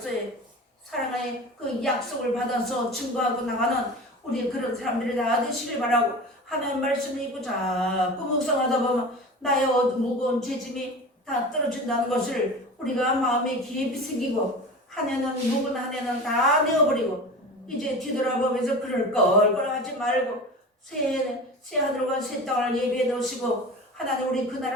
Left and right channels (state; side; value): normal; both; correlation 0.33